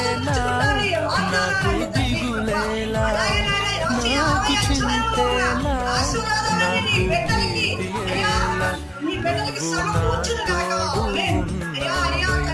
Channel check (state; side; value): identical; both; correlation 1.00